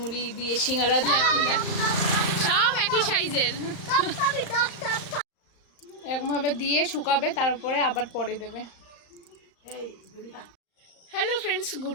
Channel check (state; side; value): late; right; 35 ms